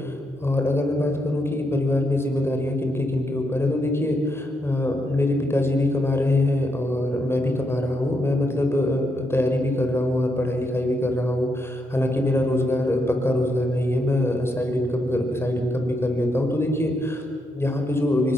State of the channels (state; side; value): normal; both; correlation 0.80